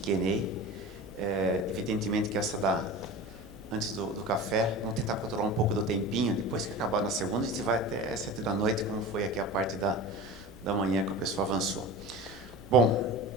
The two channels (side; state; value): both; normal; correlation 0.33